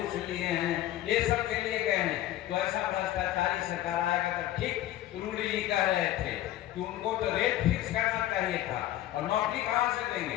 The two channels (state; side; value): quieter; right; 13.8 dB